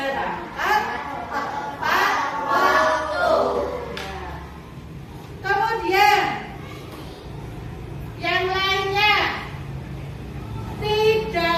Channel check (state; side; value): identical; both; correlation 1.00